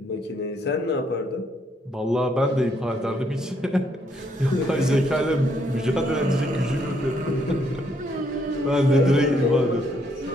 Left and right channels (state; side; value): normal; both; correlation 0.72